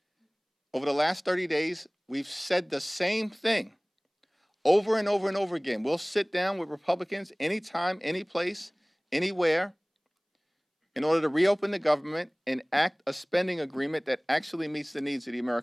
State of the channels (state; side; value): identical; both; correlation 1.00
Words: Over the last 30 days, we've said the same thing over and over and over again. We'll sit down with Republicans anytime, any place, anywhere, in order to reopen the government and act a spending agreement that actually meets the needs of the